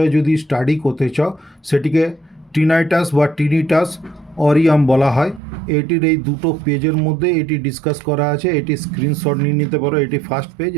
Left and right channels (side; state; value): left; drops out; at 5.4 s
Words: যদি স্টাডি করতে চাও, সেটিকে টিনাইটাস বা টিনিটাস অরিয়াম বলা হয়। এটির এই দুটো পেজের মধ্যে এটি ডিসকাস করা আছে। এটি স্ক্রিনশট নিয়ে নিতে পারো। এটি ফার্স্ট পেজ